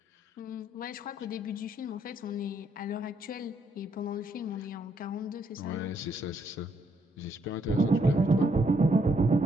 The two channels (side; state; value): both; normal; correlation 0.73